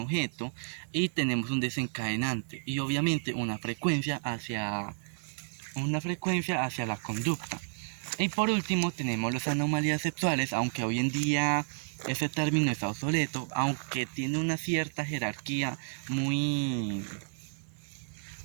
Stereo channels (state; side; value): silent; left; digital silence